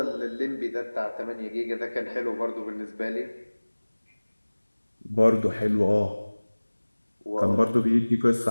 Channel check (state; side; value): inverted; both; correlation -1.00